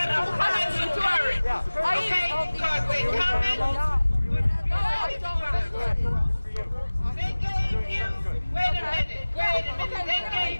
find some courage. Okay? Because they coming. They gave you, wait a minute. They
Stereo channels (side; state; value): both; inverted; correlation -1.00